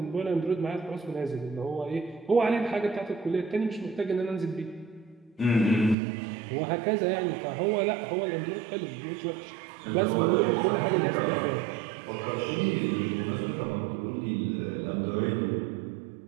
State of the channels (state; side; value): drops out; left; at 6.0 s